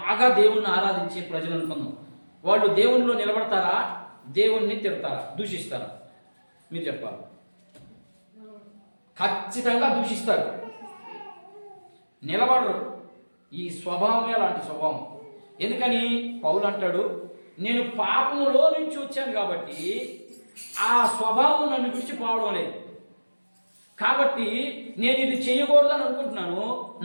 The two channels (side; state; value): both; inverted; correlation -1.00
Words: దేవుణ్ణి ఆరాధించే ప్రజలు అనుకుందాం. వాళ్ళు దేవునిలో నిలబడతారా, దేవుణ్ణి తిడతారా, దూషిస్తారా? మీరు చెప్పాలి. ఖచ్చితంగా దూషిస్తారు, నిలబడరు. ఈ స్వభావమే అలాంటి స్వభావం. ఎందుకని పౌలు అంటాడు, నేను పాపములో నుంచి వచ్చాను కాబట్టి ఆ స్వభావం నన్ను విడిచిపోవడం లేదు. కాబట్టి నేను ఇది చేయకూడదని అనుకుంటున్నాను.